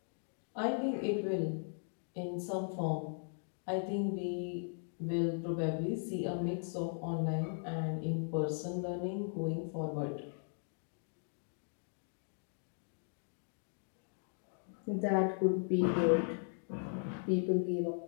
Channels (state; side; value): silent; right; digital silence